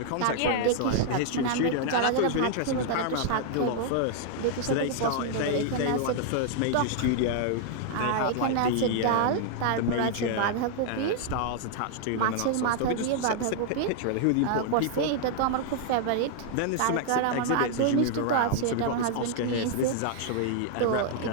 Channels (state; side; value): different; both; correlation -0.01